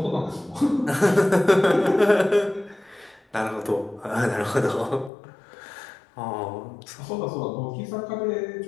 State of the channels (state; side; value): drops out; right; at 5.1 s